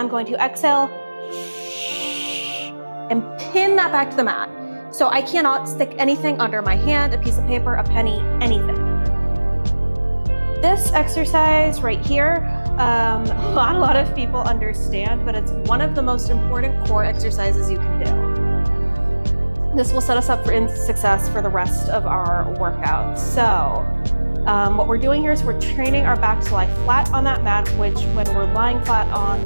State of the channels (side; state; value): both; inverted; correlation -1.00